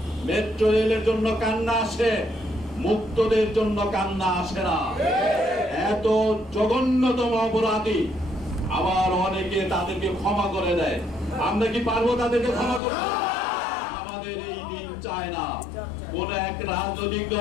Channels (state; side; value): drops out; right; at 12.8 s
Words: মেট্রো রেলের জন্য কান্না আসে, মুক্তদের জন্য কান্না আসে না। এত জঘন্যতম অপরাধী, আবার অনেকে তাদেরকে ক্ষমা করে দেয়। আমরা কি পারবো তাদেরকে ক্ষমা করতে? আমাদের এই দিন চায় না। কোন এক রাজনৈতিক